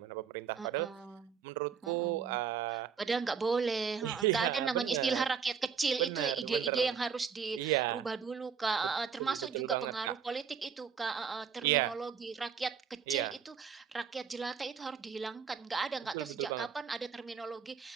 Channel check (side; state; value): left; quieter; 6.7 dB